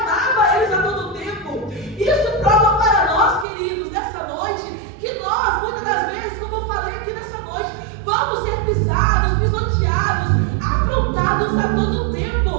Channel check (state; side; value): drops out; left; at 3.5 s